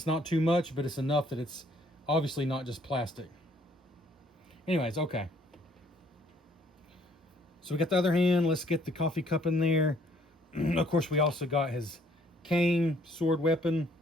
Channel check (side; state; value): both; normal; correlation 0.63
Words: not too much, but it's enough that it's obviously not just plastic. Anyways, okay. So we got the other hand. Let's get the coffee cup in there. Of course, we also got his cane, sword weapon.